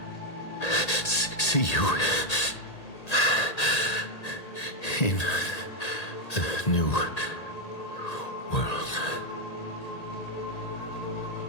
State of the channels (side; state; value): right; late; 1.8 ms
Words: see you in the new world.